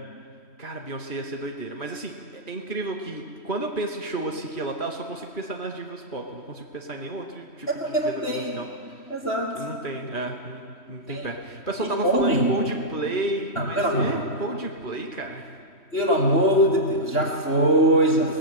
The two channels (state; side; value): late; right; 3.1 ms